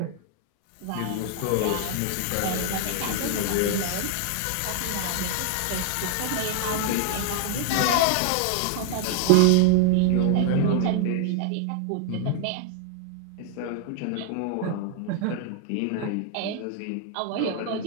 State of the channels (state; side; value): different; both; correlation 0.00